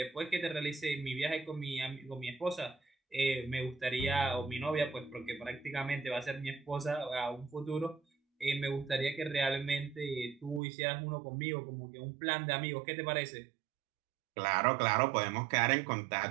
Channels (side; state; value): left; drops out; at 10.6 s